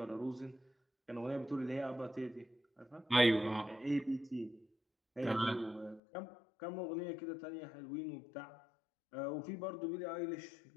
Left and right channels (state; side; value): drops out; right; at 6.0 s